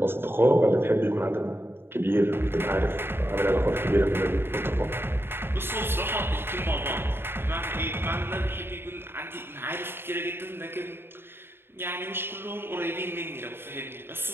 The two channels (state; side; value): late; left; 0.11 ms